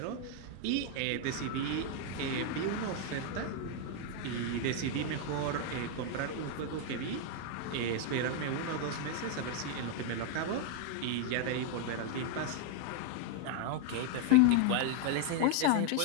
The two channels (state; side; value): different; both; correlation 0.01